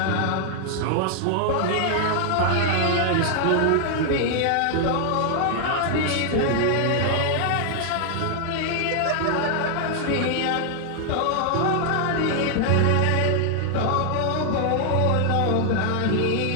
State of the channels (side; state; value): both; different; correlation 0.00